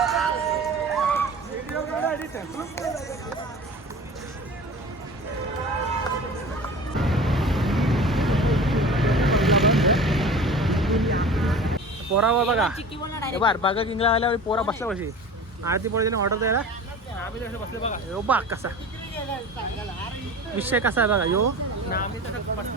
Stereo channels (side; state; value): both; normal; correlation 0.38